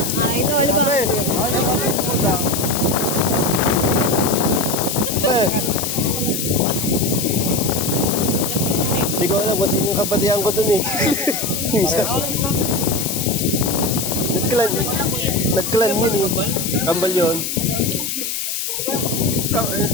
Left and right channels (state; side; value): noise; left; hiss, 3 dB below the sound